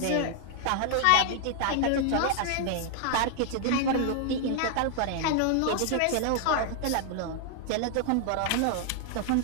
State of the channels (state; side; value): different; both; correlation 0.00